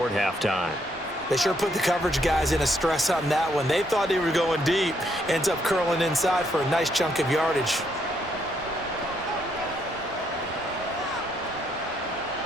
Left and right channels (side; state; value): both; normal; correlation 0.73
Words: halftime. They sure put the coverage guys in a stress on that one. They thought they were going deep. Ends up curling inside for a nice chunk of yardage.